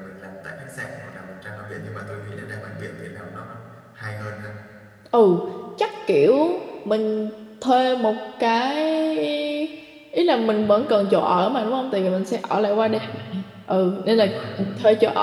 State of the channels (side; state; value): both; identical; correlation 1.00